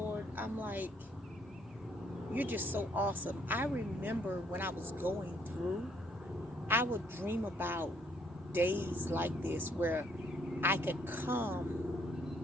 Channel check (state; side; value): normal; both; correlation 0.68